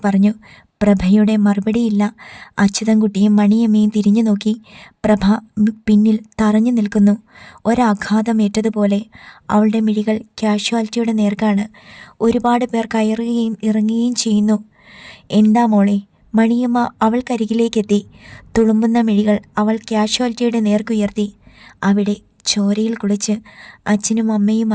പറഞ്ഞു. പ്രഭയുടെ മറുപടിയില്ല. അച്യുതൻകുട്ടിയും മണിയമ്മയും തിരിഞ്ഞു നോക്കി. പ്രഭ പിന്നിൽ തറഞ്ഞു നിൽക്കുന്നു. ഒരാഘാതമേറ്റതുപോലെ അവളുടെ മിഴികൾ കാഷ്വാലിറ്റിയുടെ നേർക്കാണ്. ഒരുപാട് പേർ കയറുകയും ഇറങ്ങുകയും ചെയ്യുന്നു. എന്താ മോളെ? മണിയമ്മ അവൾക്കരികിലേക്കെത്തി. തുളുമ്പുന്ന മിഴികൾ അവൾ കാഷ്വാലിറ്റിയുടെ നേർക്കുയർത്തി. അവിടെ ചോരയിൽ കുളിച്ച് അച്ഛനും അമ്മയും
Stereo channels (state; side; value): identical; both; correlation 1.00